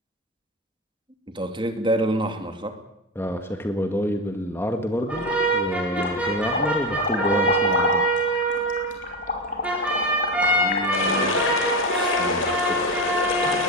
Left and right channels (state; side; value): normal; both; correlation 0.18